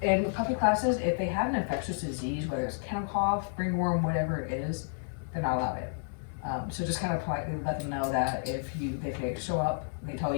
and with puppy classes, if they have an infectious disease, whether it's kennel cough, ringworm, whatever it is, they're not allowed it. So just kind of politely let them know that if they show up, they tell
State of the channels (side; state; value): right; silent; 57 dB below the other